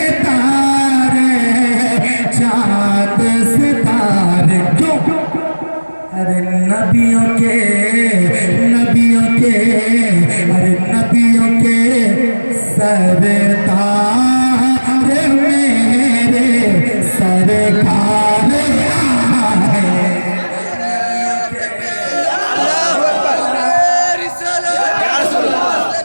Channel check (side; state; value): both; inverted; correlation -1.00